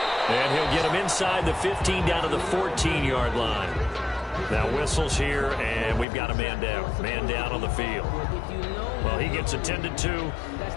And he'll get him inside the 15 down to the 14-yard line. Now whistles here, and we've got a man down. Man down on the field. Well, he gets attended to.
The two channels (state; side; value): drops out; right; at 6.1 s